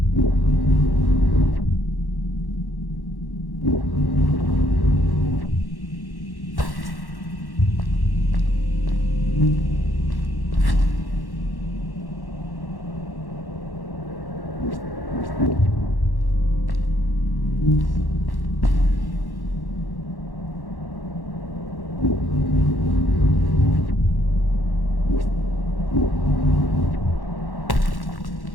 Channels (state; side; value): late; right; 1.1 ms